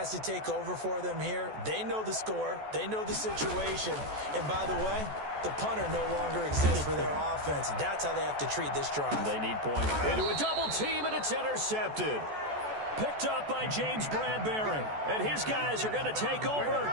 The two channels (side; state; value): left; late; 14 ms